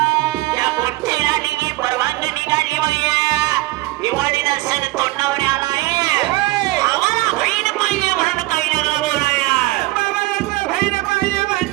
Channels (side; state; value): left; quieter; 20.4 dB